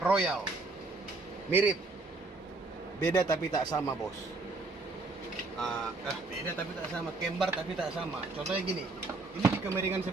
Mirip, beda tapi tak sama bos. Beda tapi tak sama, kembar tapi tak sama. Contohnya gini, ini dikemiringan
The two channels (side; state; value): left; quieter; 3.4 dB